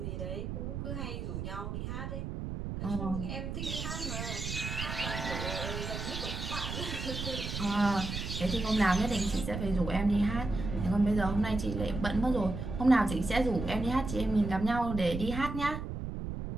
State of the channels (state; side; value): noise; right; rumble, 5 dB below the sound